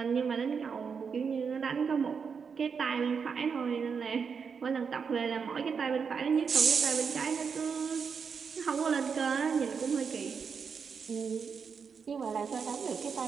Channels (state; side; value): quieter; left; 6.1 dB